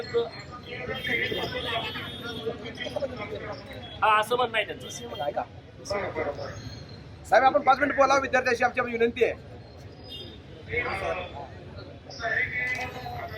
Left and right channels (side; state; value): both; identical; correlation 1.00